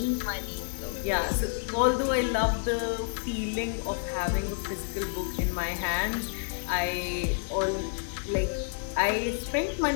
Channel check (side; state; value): right; silent; 58 dB below the other